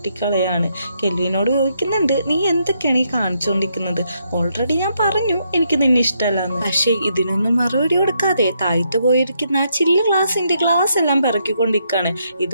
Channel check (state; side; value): inverted; both; correlation -0.77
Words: കെൽവിനോട് ചോദിക്കുന്നുണ്ട്, നീ എന്തൊക്കെയാണ് ഈ കാണിച്ചുകൊണ്ടിരിക്കുന്നത്? ഓൾറെഡി ഞാൻ പറഞ്ഞു എനിക്ക് നിന്നെ ഇഷ്ടമല്ലാന്ന്. പക്ഷേ ഇതിനൊന്നും മറുപടി കൊടുക്കാതെ താഴ്ത്തു പോയിരിക്കുന്ന ആ ചില്ല് ഗ്ലാസ് എല്ലാം പിറക്കിക്കൊണ്ടിരിക്കുകയാണ്.